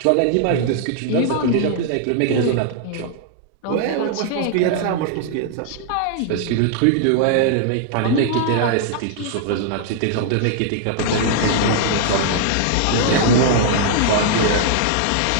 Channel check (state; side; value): different; both; correlation -0.01